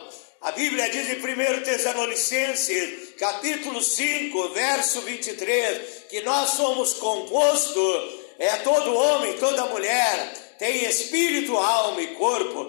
A Bíblia diz em 1 Tessalonicenses, capítulo 5, verso 23, que nós somos compostos, todo homem, toda mulher, tem espírito, alma e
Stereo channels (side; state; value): right; silent; 62 dB below the other